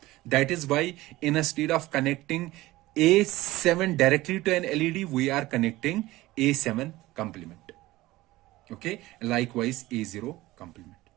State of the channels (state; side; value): quieter; left; 18.0 dB